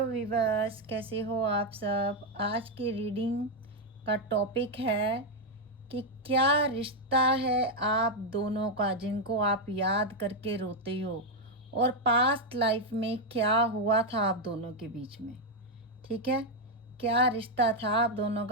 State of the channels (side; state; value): both; normal; correlation 0.02